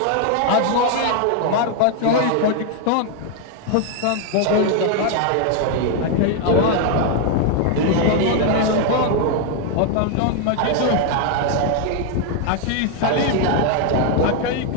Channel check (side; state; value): both; different; correlation 0.00